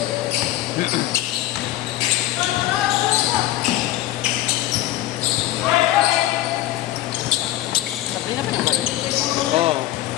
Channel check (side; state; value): right; quieter; 15.3 dB